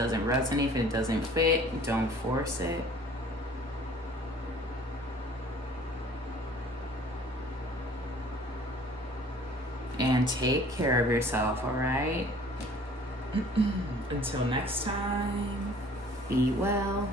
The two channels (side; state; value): both; normal; correlation 0.51